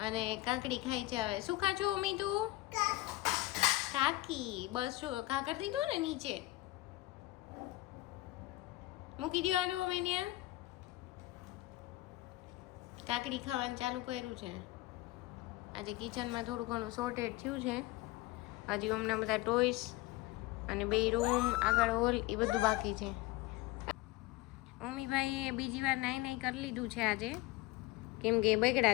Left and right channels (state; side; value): quieter; right; 19.0 dB